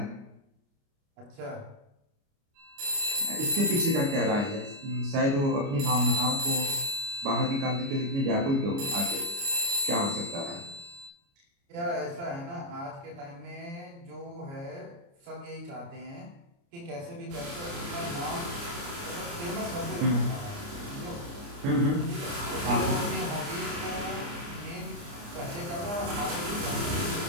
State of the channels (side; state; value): left; late; 29 ms